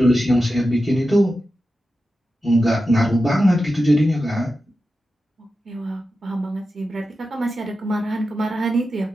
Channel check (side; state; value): both; normal; correlation 0.91